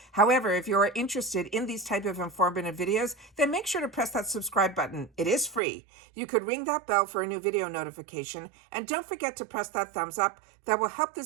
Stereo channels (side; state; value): left; drops out; at 5.6 s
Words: However, if you're interested in these type of informative videos, then make sure to press that subscribe button. It is free. You could ring that bell for a new video notification, and don't forget to press that thumbs up. That will help